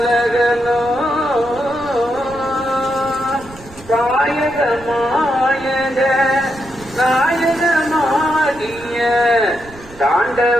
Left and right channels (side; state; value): right; noise; rumble, 19 dB below the sound